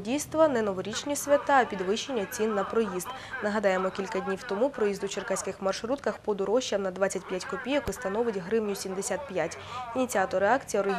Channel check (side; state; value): both; identical; correlation 1.00